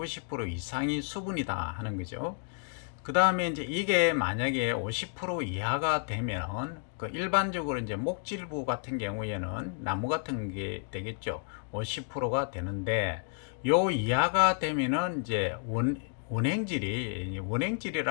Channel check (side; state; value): right; silent; 56 dB below the other